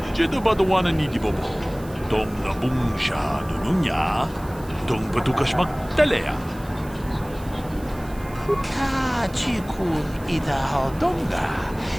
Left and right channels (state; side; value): noise; right; hiss, 22 dB below the sound